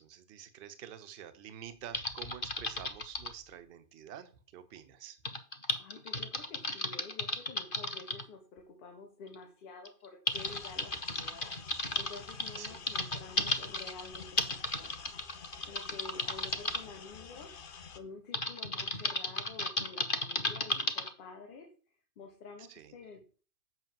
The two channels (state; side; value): late; right; 2.5 ms